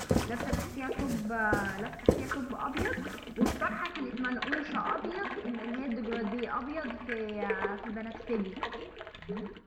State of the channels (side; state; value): both; identical; correlation 1.00